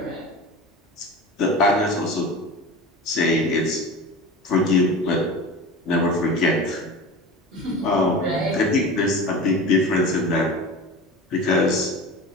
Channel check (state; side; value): normal; both; correlation 0.32